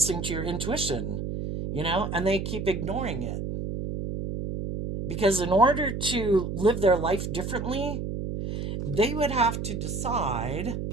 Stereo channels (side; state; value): right; noise; hum, 4 dB below the sound